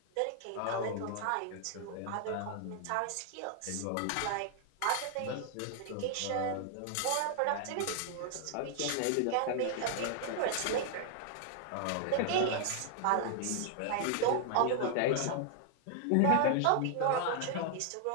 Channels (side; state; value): both; different; correlation 0.00